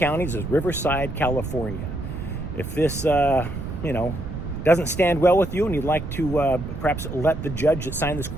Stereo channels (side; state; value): right; noise; rumble, 7 dB below the sound